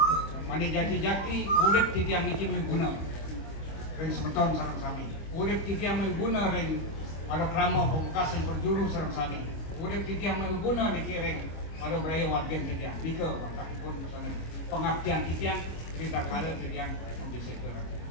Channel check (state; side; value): late; right; 25 ms